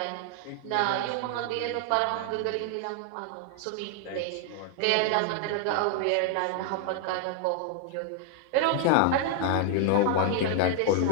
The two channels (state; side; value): different; both; correlation 0.00